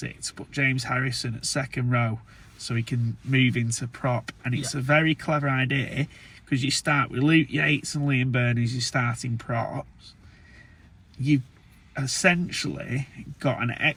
to put James Harrison at second row so he can move into prop, and it's a very clever idea, because you start with Luke Yates and Liam Byrne as your starting props. You've essentially got an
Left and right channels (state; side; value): identical; both; correlation 1.00